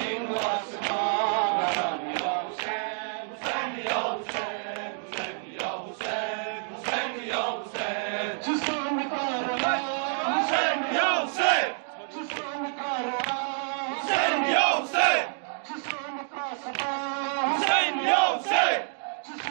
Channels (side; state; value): left; silent; 59 dB below the other